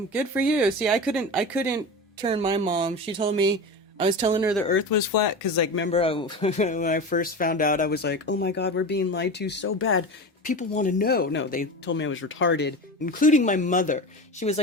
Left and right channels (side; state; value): both; normal; correlation 0.27